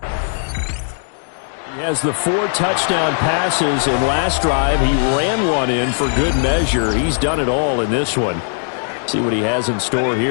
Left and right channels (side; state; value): right; silent; digital silence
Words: He has the 4 touchdown passes in last drive. He ran one in for good measure. He's done it all in this one. See what he has in store